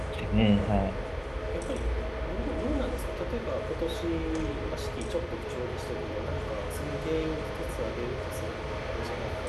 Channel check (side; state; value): both; identical; correlation 1.00